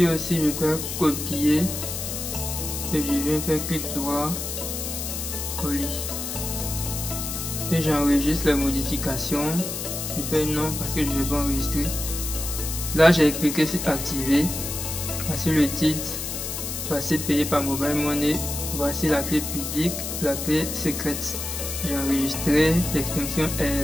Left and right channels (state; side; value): noise; left; hiss, 5 dB below the sound